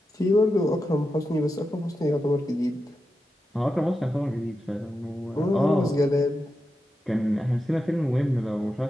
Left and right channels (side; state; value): both; normal; correlation 0.89